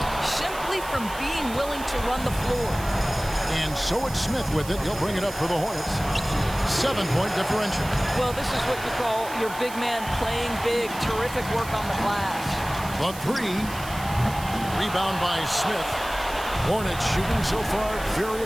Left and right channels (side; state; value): right; noise; hiss, 14 dB below the sound